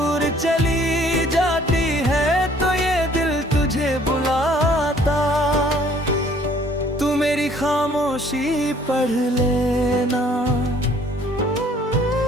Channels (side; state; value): both; normal; correlation 0.58